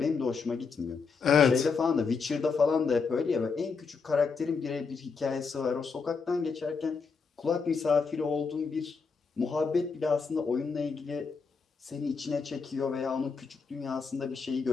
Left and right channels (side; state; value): right; quieter; 5.1 dB